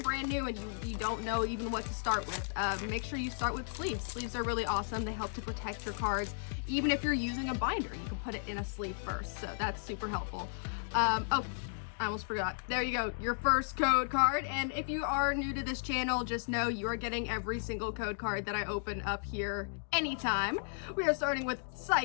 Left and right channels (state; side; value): silent; right; digital silence